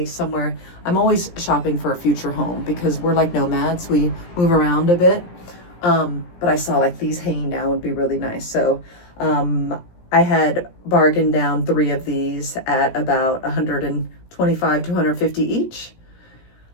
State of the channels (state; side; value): late; right; 17 ms